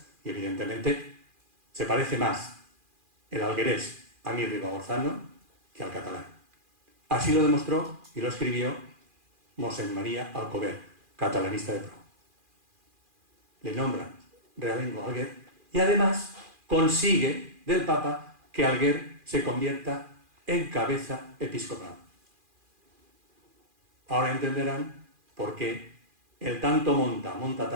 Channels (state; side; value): late; left; 2.4 ms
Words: y evidentemente se parece más el alguerés a mi ribagorzano que al catalán. Así lo demostró y lo escribió Mosén María Alcover, catalanista de pro. Le nombran realengo a Alguer y además consigue del Papa que Alguer se convierta en cabeza episcopal. Ahora entenderán por qué el tanto monta